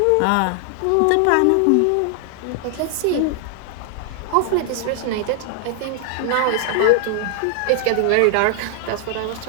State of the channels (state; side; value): different; both; correlation 0.00